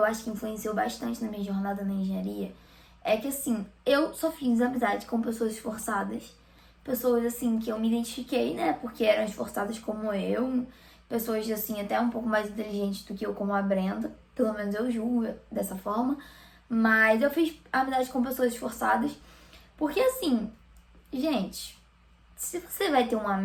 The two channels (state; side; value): identical; both; correlation 1.00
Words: acho que influenciou bastante na minha jornada na engenharia é que, assim, eu só fiz amizade com pessoas esforçadas, pessoas, assim, que eu me identifiquei, né, porque eram esforçadas como eu, pessoas, assim, até um pouco mais inteligentes do que eu, como a Brenda, pelo menos eu julgo dessa forma, mas eu fiz amizade com pessoas esforçadas, porque, assim, gente, se você vai ter um